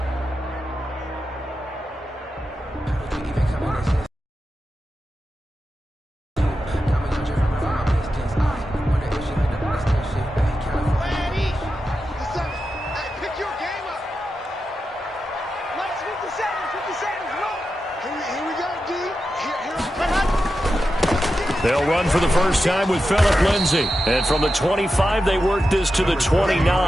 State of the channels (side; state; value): both; normal; correlation 0.90